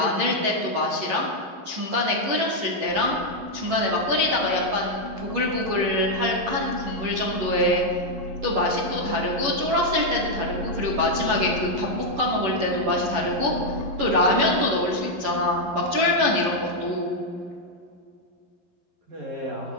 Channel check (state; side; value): late; left; 11 ms